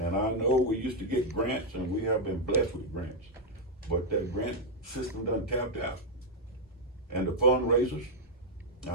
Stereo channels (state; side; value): normal; both; correlation -0.01